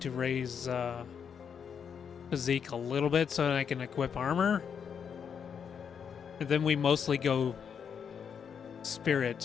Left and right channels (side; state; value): right; quieter; 7.2 dB